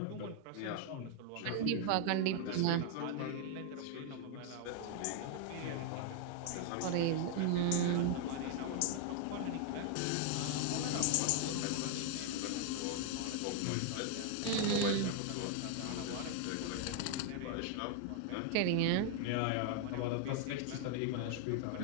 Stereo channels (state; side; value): different; both; correlation 0.00